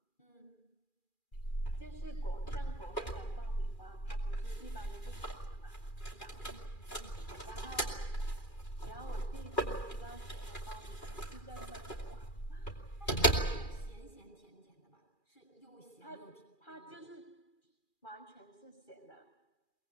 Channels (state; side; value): late; right; 2.4 ms